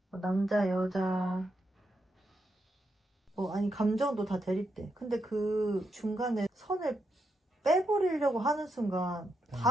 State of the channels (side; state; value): both; normal; correlation 0.83